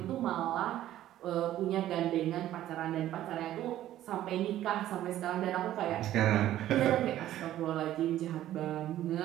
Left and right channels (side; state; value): left; quieter; 13.1 dB